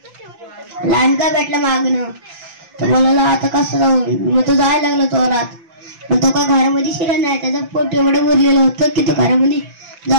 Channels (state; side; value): late; left; 5.9 ms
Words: लांडगा भेटला मागणं. तो बोलायला, आता कसं जाऊ. मग तो जायला लागला चोरात. पण तो का घरामध्ये शिरा नाही, त्याचं पोट एवढं भरलेलं होतं की तो घरामध्ये